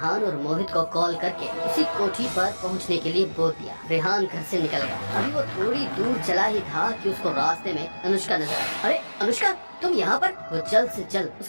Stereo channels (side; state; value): both; inverted; correlation -1.00